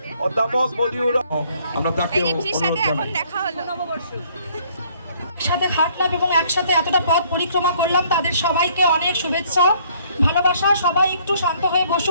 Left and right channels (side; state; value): both; inverted; correlation -0.63